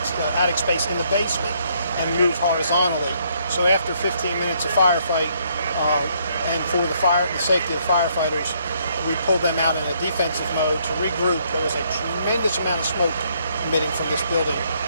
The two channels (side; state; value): both; inverted; correlation -0.70